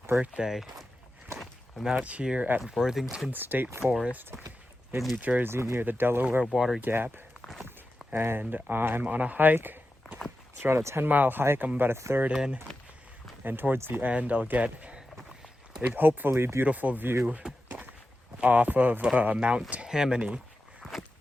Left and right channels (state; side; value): normal; both; correlation 0.91